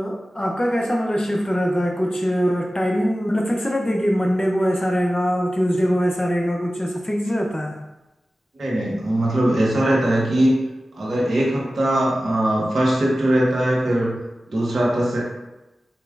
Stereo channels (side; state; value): both; normal; correlation 0.95